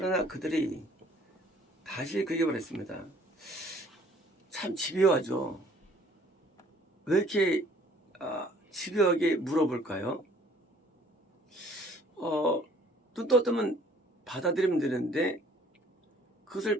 그들이 다시 그 얘기를 했습니다. 참 집요하죠. 왜 이렇게 집요하게 물어볼까요? 눈 떠뜨면 받아들이면 되는데 그것을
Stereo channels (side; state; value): both; normal; correlation 0.57